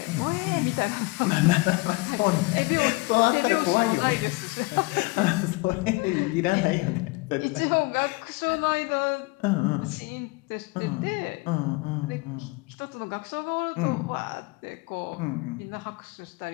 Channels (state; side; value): quieter; right; 24.9 dB